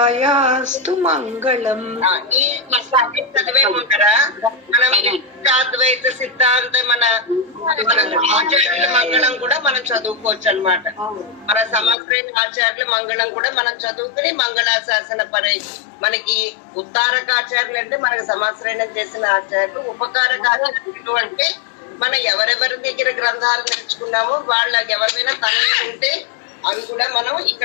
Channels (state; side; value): drops out; right; at 12.0 s